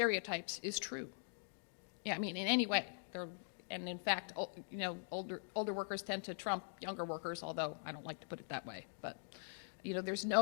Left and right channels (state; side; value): silent; right; digital silence